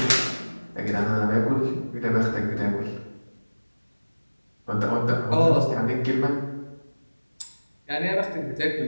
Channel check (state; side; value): inverted; both; correlation -1.00